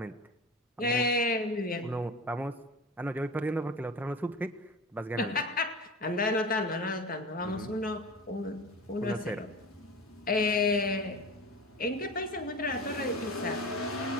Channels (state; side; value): normal; both; correlation 0.31